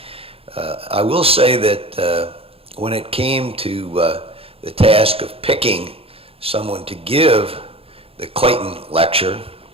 I will say that when it came to the task of picking someone to give the Clayton lecture,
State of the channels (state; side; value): late; left; 0.27 ms